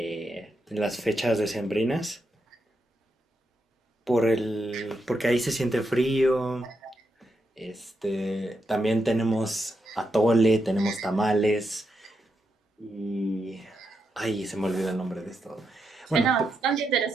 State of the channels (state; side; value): normal; both; correlation 0.84